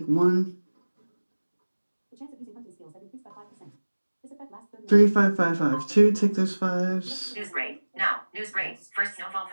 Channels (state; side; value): inverted; both; correlation -1.00